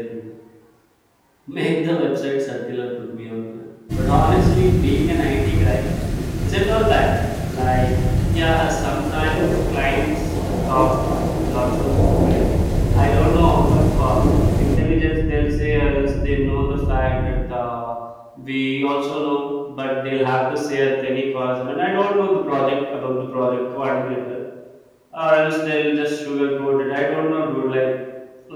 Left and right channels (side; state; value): both; identical; correlation 1.00